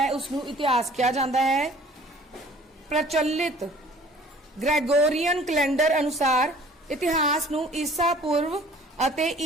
उसनू इतिहास कहा जांदा है। प्रचलित ग्रेगोरियन कैलेंडर अनुसार इतिहास नू ईसा पूर्व अते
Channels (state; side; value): normal; both; correlation 0.51